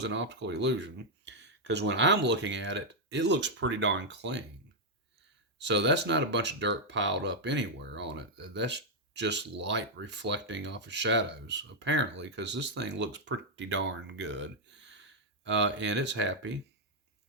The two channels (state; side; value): normal; both; correlation -0.02